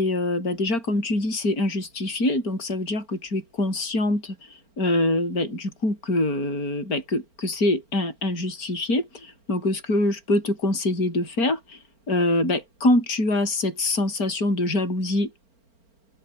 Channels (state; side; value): late; right; 4.4 ms